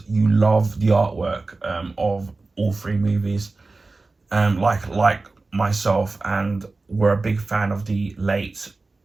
you love the artwork of all three movies, like myself, and were a big fan of the late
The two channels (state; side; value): quieter; left; 3.6 dB